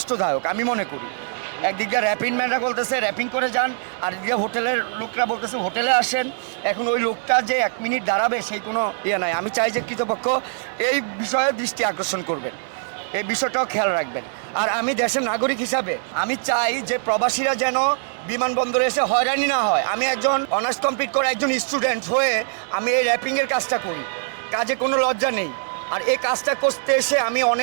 আমি মনে করি। একদিক দিয়ে র্যাপিং ম্যানরা বলতেছে র্যাপিং করে যান, আর দিকে হোটেলের লোকরা বলতেছে হোটেলে আসেন। এখন ওই লোকটা যে 1 মিনিট দাঁড়াবে সেই কোনো নাই। আমি চাই যে কর্তৃপক্ষ এই বিষয়ে দৃষ্টি আকর্ষণ করবেন, এই বিষয়টাও খেয়াল রাখবেন। আর আমি দেশের নাগরিক হিসাবে আমি চাই যে প্রবাসীরা যেন বিমানবন্দরে এসে হয়রানি না হয়। আমি একজন অনার্স কমপ্লিট করে একজন স্টুডেন্ট হয়ে আমি এই র্যাপিংয়ের কাজটা করি, কাজে কোনো লজ্জা নেই। আর এই কাজটা করতে এসে আমি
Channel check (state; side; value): silent; left; 64 dB below the other